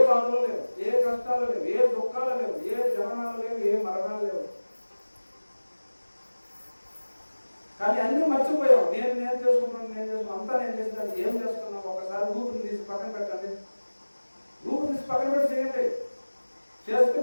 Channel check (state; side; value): inverted; both; correlation -1.00